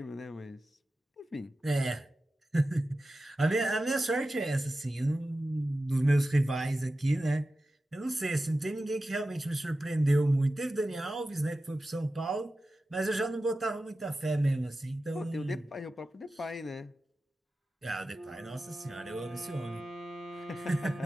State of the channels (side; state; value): both; normal; correlation 0.93